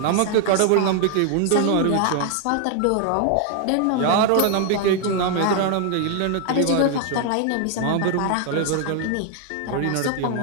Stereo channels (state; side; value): different; both; correlation 0.00